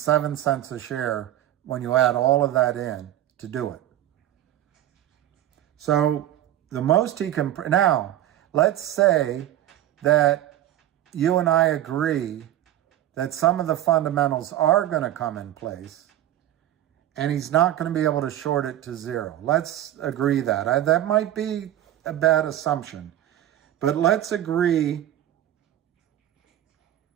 cents a share when you add all of that in to do it. So the most he can... Now, let's say that you and I agree that some of the fundamentals are going to come in place and he's not going to be able to short it to zero. Let's agree that. That might be a bad assumption, but let's agree,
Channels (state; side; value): quieter; left; 12.7 dB